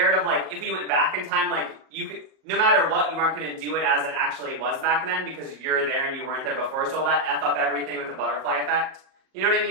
of, like, if we went back in time, like, you could... No matter what, you aren't going to do it as it actually was back then because you're there and you weren't there before. So will that F up everything with the butterfly effect? You know what I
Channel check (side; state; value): left; late; 38 ms